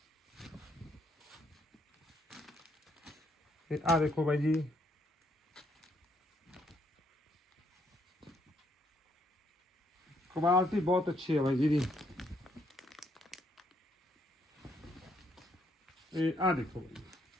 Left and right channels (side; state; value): both; normal; correlation 0.72